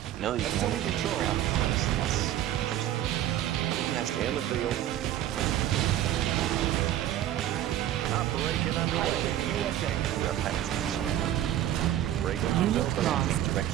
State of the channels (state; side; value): quieter; left; 12.4 dB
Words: No, you can only control around. In the field. Operation underway. Frequencies Unit open.